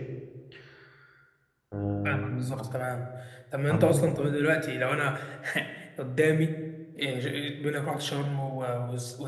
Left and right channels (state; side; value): identical; both; correlation 1.00